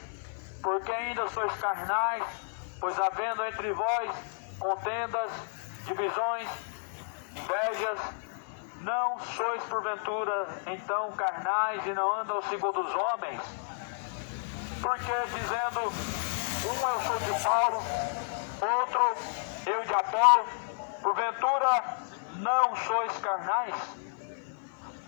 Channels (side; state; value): right; silent; 57 dB below the other